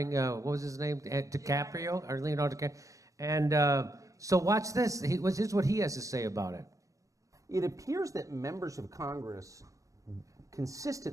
what was his name, DiCaprio or Leonardo DiCaprio? And so watch this. Here's what he has to say about it. It appears that members of Congress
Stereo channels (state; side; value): late; left; 0.16 ms